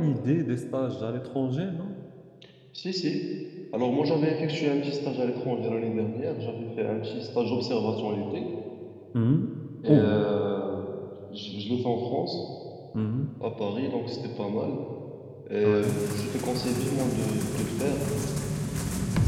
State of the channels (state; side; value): identical; both; correlation 1.00